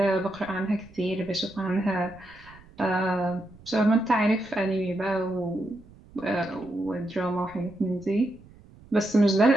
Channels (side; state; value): right; noise; rumble, 23 dB below the sound